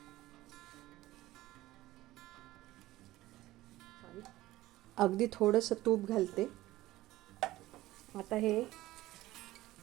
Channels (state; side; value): quieter; left; 16.8 dB